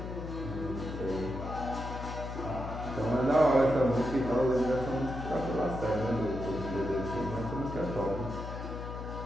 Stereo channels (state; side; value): noise; left; hum, 7 dB below the sound